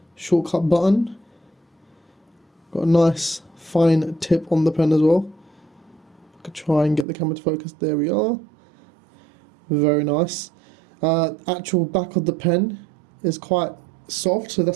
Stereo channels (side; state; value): left; drops out; at 7.1 s